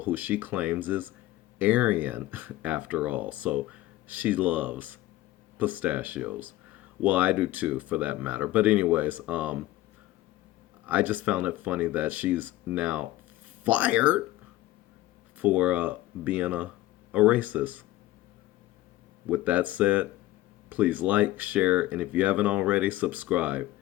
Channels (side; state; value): right; quieter; 16.4 dB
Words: who she claims is Aryan after all. So she loves pistachios. Well, I do too, for that matter. But anyways, I just found it funny that she's now fired for being a racist. With that said, please like, share, and if you haven't already, subscribe.